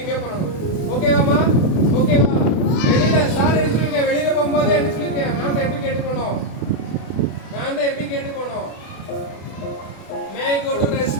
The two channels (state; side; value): late; right; 32 ms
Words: பண்ணணும் ஓகேவாமா ஓகேவா வெளியில சார் எடுத்துருக்கேன் வெளியில போகும்போது என்ன சொல்லிருக்கேன் மேம் எப்படி கேட்டுக்கணும் மேம் எப்படி கேட்டுக்கணும் may go to